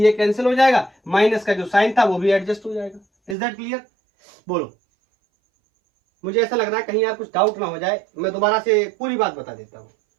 ए कैंसिल हो जाएगा, माइनस का जो साइन था वो भी एडजस्ट हो जाएगा। इज दैट क्लियर, बोलो। मुझे ऐसा लग रहा है कहीं यार कुछ डाउट ना हो जाए, मैं दोबारा से पूरी बात बता देता हूं,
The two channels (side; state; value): left; drops out; at 3.4 s